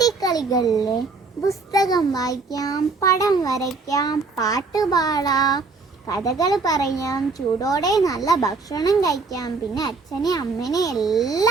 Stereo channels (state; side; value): quieter; left; 4.2 dB